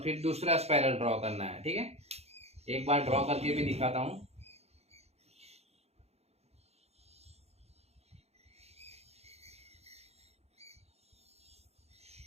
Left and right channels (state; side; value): late; left; 0.30 ms